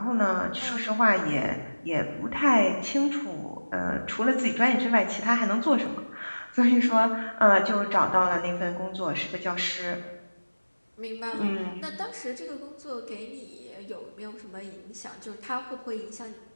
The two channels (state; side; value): inverted; both; correlation -1.00